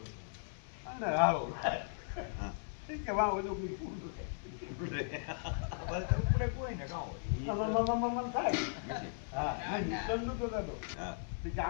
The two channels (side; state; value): right; silent; 53 dB below the other